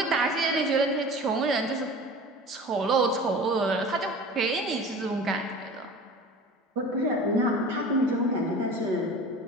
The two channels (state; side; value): normal; both; correlation 0.38